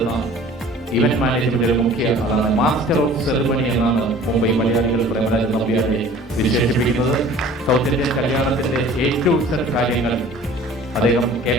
ഇവന്റ് മാനേജ്മെന്റിലെ മുഖ്യ ആളാണ്. മാസ്റ്റർ ഓഫ് സെറിമണി എന്നാണ് മുംബൈ മലയാളികൾ പ്രേമരാജൻ നമ്പ്യാരെ വിശേഷിപ്പിക്കുന്നത്. സൗത്ത് ഇന്ത്യൻ കല്യാണത്തിന്റെ ഏറ്റവും കാര്യങ്ങൾ അദ്ദേഹം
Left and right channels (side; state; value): both; normal; correlation 0.47